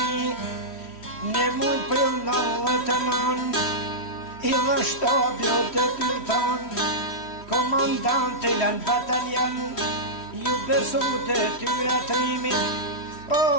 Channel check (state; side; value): late; right; 3.1 ms